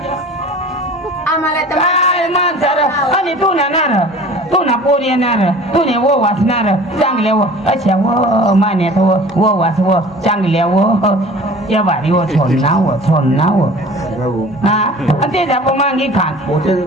आम्हाला तर काय माणसार आणि तू ना पोर येणार तू ने वो वाचणार चांगल्या व अशा व मान्यात व वाच व चांगल्या व या भारी व छोडना व हा आणि ते जाप मांगी खान मोठे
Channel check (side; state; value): both; normal; correlation 0.44